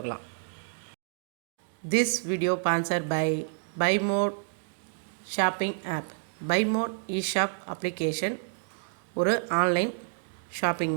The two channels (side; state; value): left; silent; digital silence